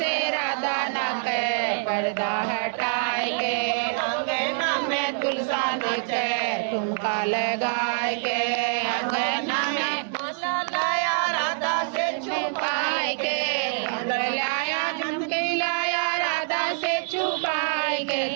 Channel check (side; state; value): left; silent; digital silence